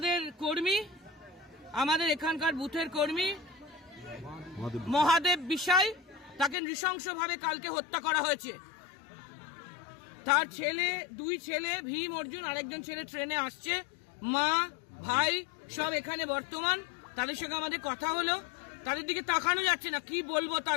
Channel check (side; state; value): right; drops out; at 6.6 s